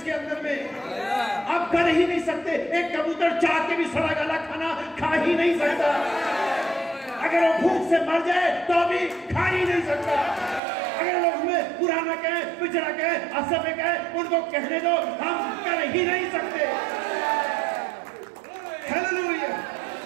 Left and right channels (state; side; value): drops out; left; at 10.6 s